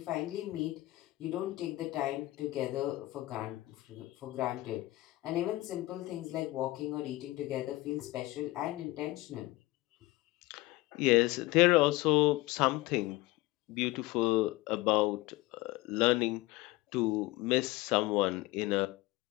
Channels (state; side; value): quieter; right; 19.2 dB